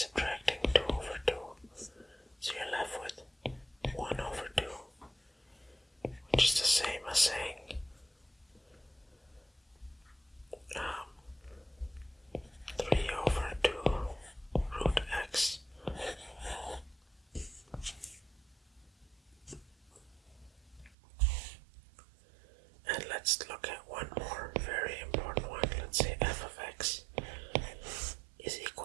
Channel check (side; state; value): left; drops out; at 21.0 s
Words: 2 over 2. So you're left with 1 over 2, which is the same as saying 3 over 2 root x. And let's look at one more very important one. Let's say f of x is